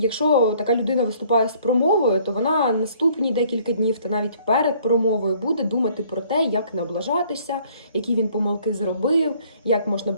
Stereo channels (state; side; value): inverted; both; correlation -0.59